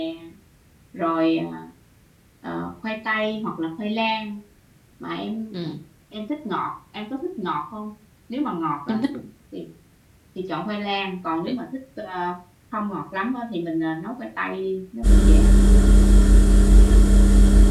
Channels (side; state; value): both; identical; correlation 1.00